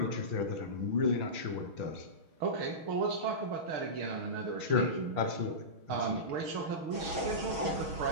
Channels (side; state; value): left; late; 6.3 ms